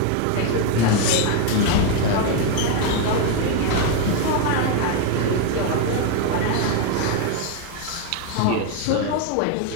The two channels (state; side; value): different; both; correlation 0.01